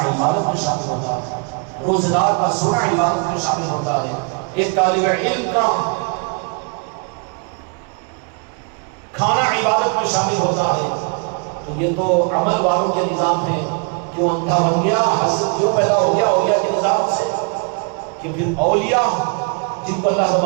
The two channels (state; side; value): quieter; left; 36.4 dB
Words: عبادت میں شامل ہوتا ہے، روزہ دار کا سونا عبادت میں شامل ہوتا ہے، ایک طالب علم کا کھانا عبادت میں شامل ہوتا ہے۔ تو یہ تو عمل والوں کے نظام ہے، کیوں اندھا بن گیا، حسد کیوں پیدا ہو گیا اولیاء کے نظام سے، کہ پھر اولیاء جن کو اللہ